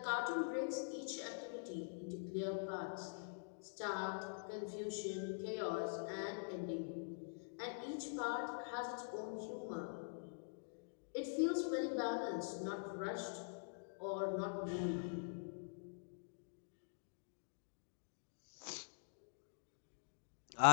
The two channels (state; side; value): silent; right; digital silence